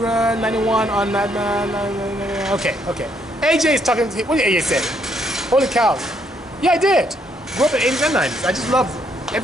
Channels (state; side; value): normal; both; correlation 0.72